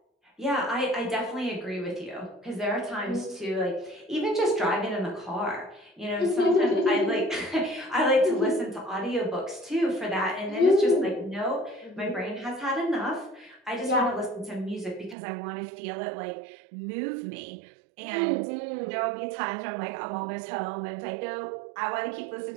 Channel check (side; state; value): left; drops out; at 15.2 s